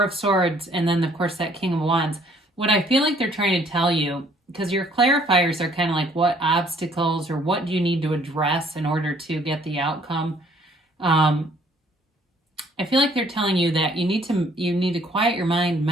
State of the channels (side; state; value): both; normal; correlation 0.61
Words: of Swords, and then, of course, that King of Wands. What I feel like they're trying to tell you, because your clarifiers are kind of like what obstacles or what do you need to address in order to get the outcome. I feel like they're telling you that you need to quiet your mind,